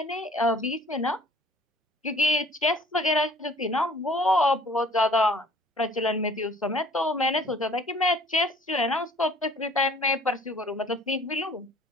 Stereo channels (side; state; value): both; normal; correlation 0.53